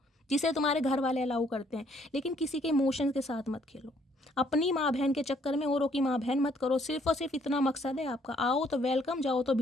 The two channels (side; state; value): both; normal; correlation 0.66